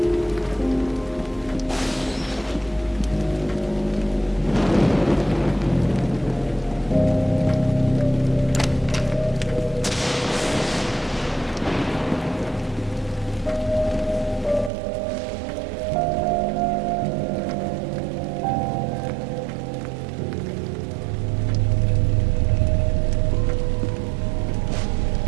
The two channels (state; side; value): drops out; left; at 14.7 s